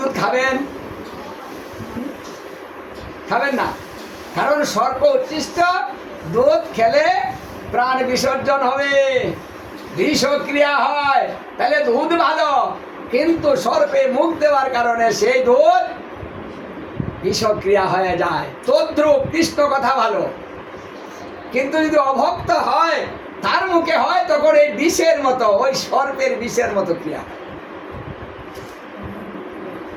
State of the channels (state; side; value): identical; both; correlation 1.00